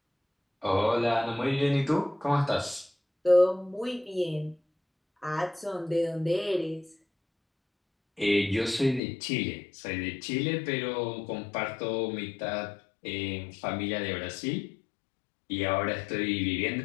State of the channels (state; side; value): drops out; right; at 9.0 s